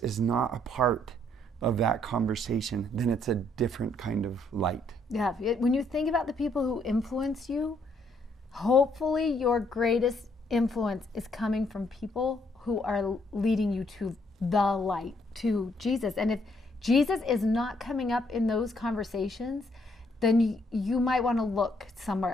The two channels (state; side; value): normal; both; correlation 0.70